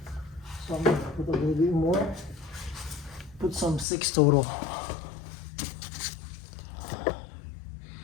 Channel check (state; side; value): drops out; right; at 3.9 s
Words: So I'm gonna put a little bit more. Put some 6 total.